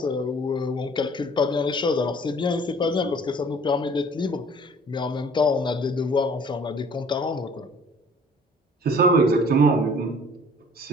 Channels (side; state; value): both; normal; correlation 0.53